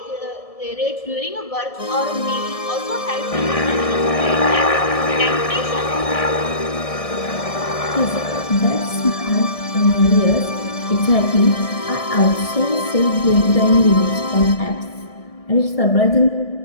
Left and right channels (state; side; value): late; right; 1.7 ms